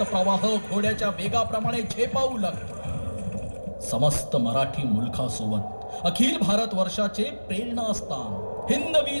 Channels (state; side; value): inverted; both; correlation -1.00